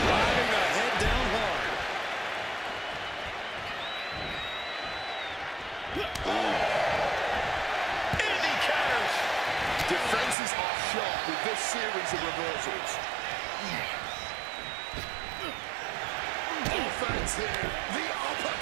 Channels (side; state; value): left; drops out; at 10.4 s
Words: the head down hard. And he counters. Defenses are sharp with this series of reversals. Offense here. The